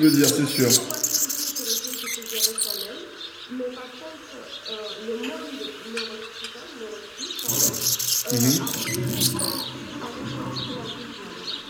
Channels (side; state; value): both; identical; correlation 1.00